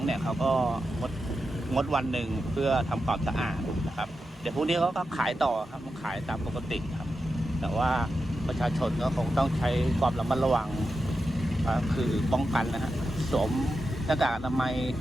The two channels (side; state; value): both; normal; correlation 0.89